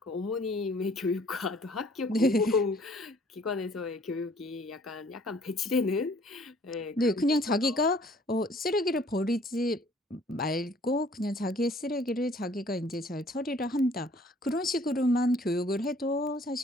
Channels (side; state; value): both; normal; correlation 0.57